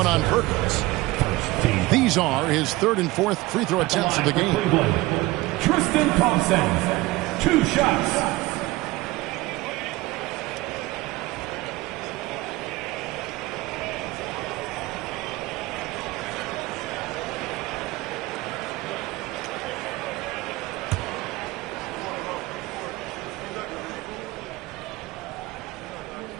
on Perkins. These are his 3rd and 4th free throw attempts of the game. Tristan Thompson, 2 shots.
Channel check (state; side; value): quieter; left; 20.0 dB